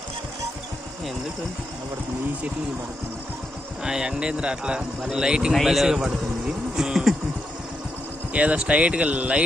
ఎందుకు నిలబడుతుంది? ఈ చెట్లు పడుతుంది. ఎండేంద్ర అట్లా లైటింగ్ పడుతుంది. ఏదో స్ట్రైట్గా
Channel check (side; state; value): both; normal; correlation 0.83